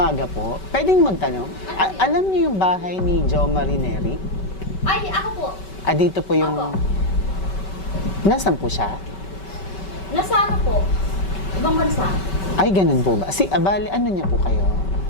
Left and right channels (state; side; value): late; right; 5.2 ms